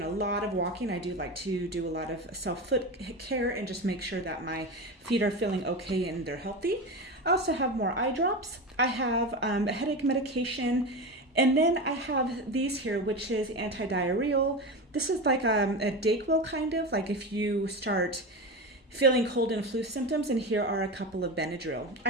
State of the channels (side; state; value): both; normal; correlation 0.22